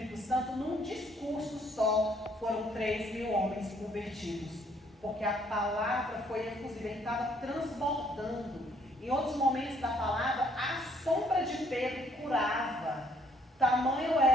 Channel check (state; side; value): normal; both; correlation 0.65